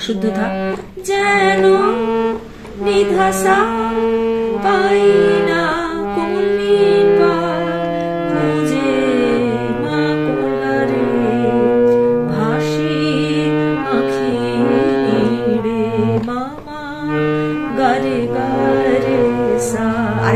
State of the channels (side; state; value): both; identical; correlation 1.00